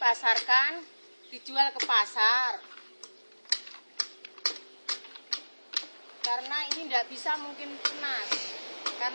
dijual ke pasar. Karena ini tidak bisa mungkin tunas,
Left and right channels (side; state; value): both; inverted; correlation -1.00